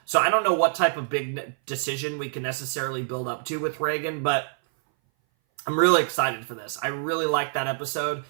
So I don't know what type of big decision we can necessarily build up to with Reagan, but I'm really excited for this. I really liked that episode,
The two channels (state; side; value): silent; left; 58 dB below the other